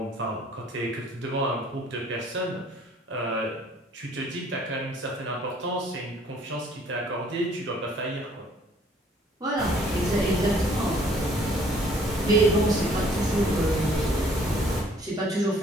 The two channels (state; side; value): normal; both; correlation 0.59